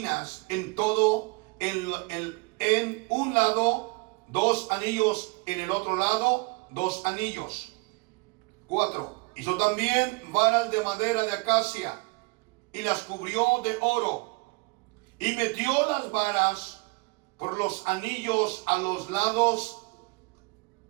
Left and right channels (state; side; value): quieter; left; 27.9 dB